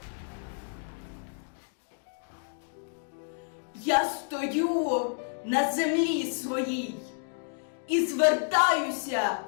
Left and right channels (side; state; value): right; silent; digital silence